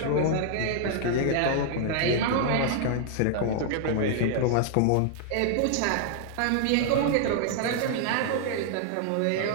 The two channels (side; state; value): both; different; correlation -0.01